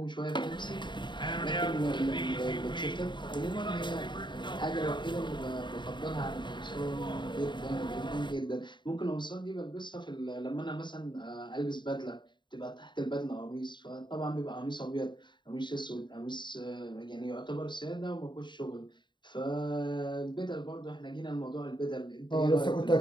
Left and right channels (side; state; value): right; late; 0.22 ms